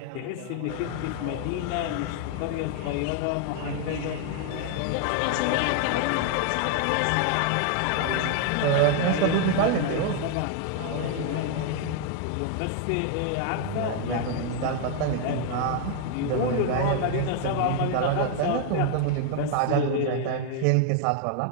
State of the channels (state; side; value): different; both; correlation 0.00